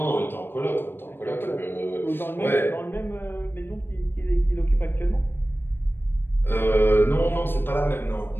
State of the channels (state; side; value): late; right; 0.10 ms